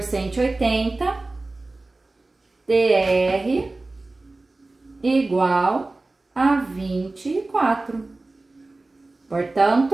180, TR igual a 24.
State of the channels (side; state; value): left; quieter; 3.2 dB